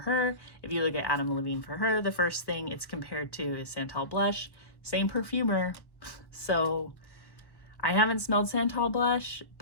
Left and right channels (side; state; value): right; late; 1.3 ms